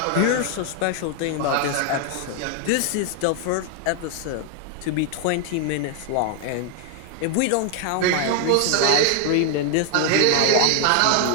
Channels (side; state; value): both; different; correlation 0.00